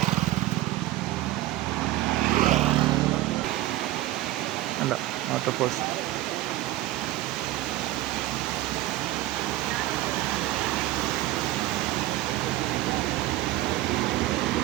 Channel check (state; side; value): quieter; left; 16.2 dB